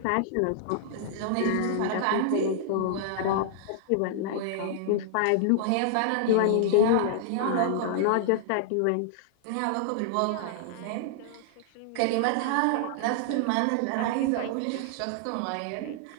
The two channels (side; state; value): both; different; correlation -0.01